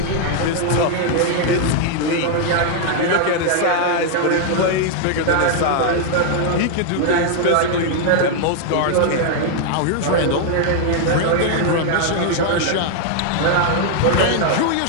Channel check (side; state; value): both; different; correlation 0.00